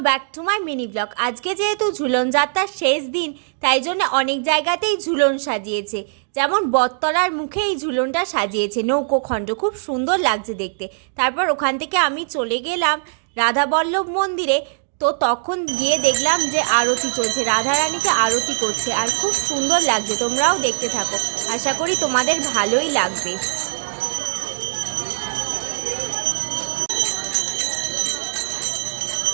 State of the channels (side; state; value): left; silent; digital silence